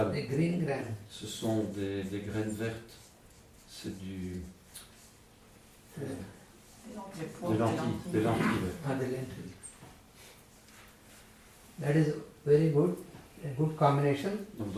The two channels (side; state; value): both; identical; correlation 1.00